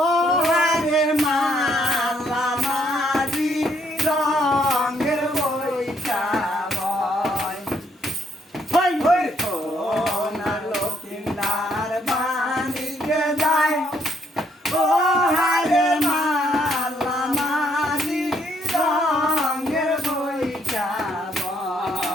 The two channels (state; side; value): normal; both; correlation 0.71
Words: হারে মালা মারি রঙের বইটা বয় হই হই সোনার লক্ষিন্দার বাণিজ্যে যায় ও হারে মালা মারি রঙের বইটা